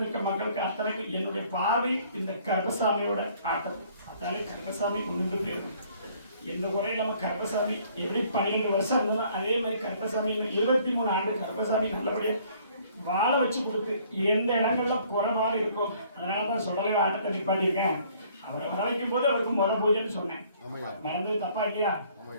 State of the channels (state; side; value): inverted; both; correlation -0.60